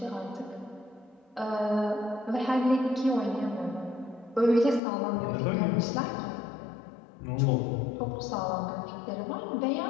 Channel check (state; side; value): drops out; right; at 4.8 s